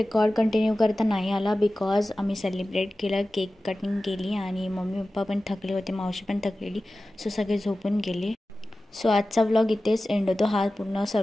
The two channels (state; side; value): normal; both; correlation 0.95